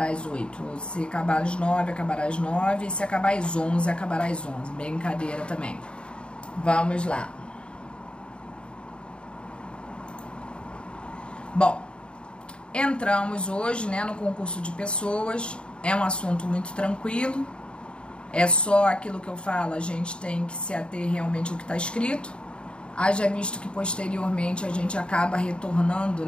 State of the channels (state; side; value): late; right; 0.054 ms